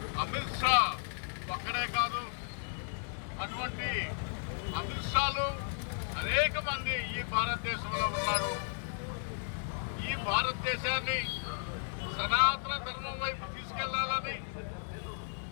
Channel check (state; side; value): silent; right; 55 dB below the other